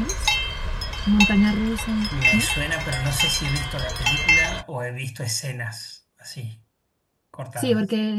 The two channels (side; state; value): both; identical; correlation 1.00